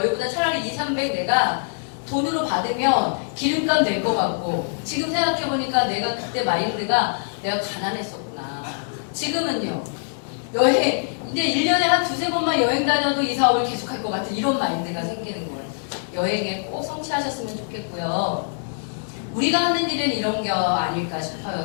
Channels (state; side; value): silent; right; digital silence